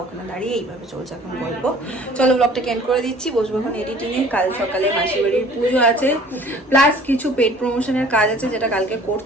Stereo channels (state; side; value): normal; both; correlation 0.51